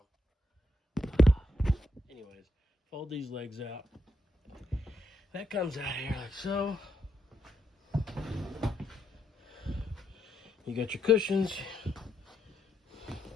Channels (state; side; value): normal; both; correlation 0.80